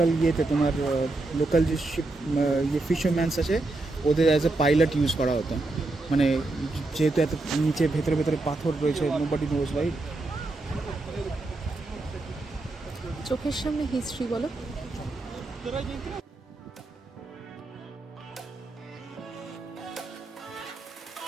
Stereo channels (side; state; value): left; quieter; 3.1 dB